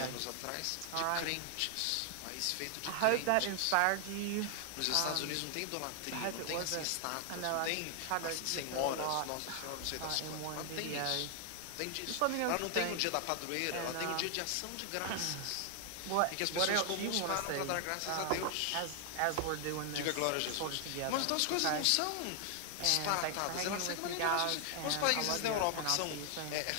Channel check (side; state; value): both; different; correlation 0.00